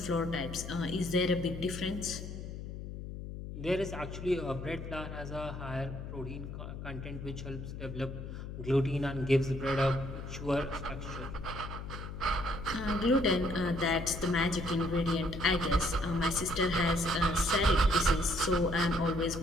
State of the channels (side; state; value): left; noise; hum, 8 dB below the sound